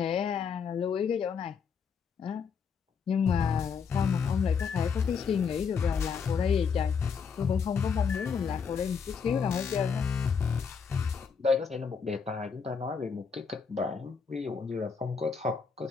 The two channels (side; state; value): right; quieter; 6.1 dB